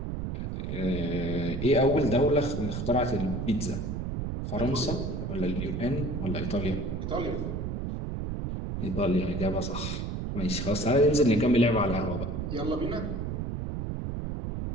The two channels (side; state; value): right; noise; rumble, 3 dB below the sound